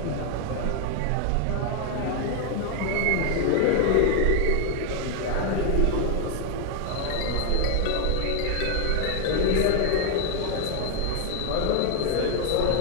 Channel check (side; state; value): both; different; correlation 0.00